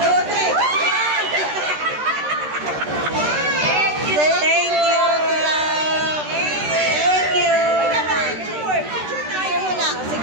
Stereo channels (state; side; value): late; left; 13 ms